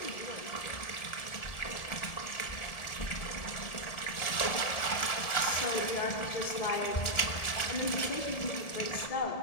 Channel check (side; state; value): right; late; 1.7 ms